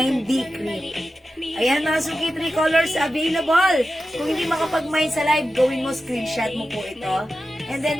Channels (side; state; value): both; normal; correlation 0.92